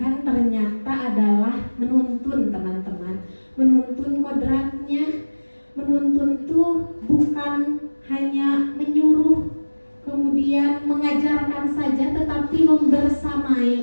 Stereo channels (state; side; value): inverted; both; correlation -1.00